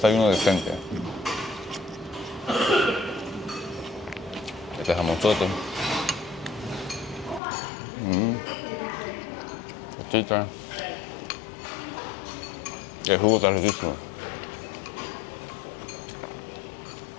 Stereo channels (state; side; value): drops out; right; at 7.4 s